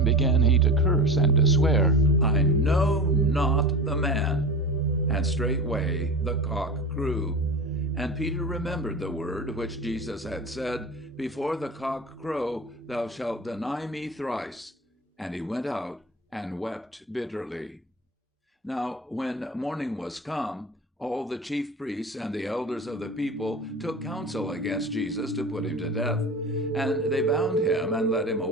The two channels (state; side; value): normal; both; correlation 0.30